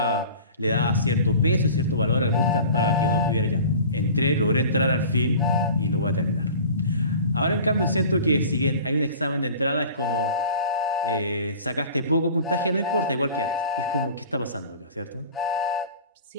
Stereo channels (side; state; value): both; inverted; correlation -0.42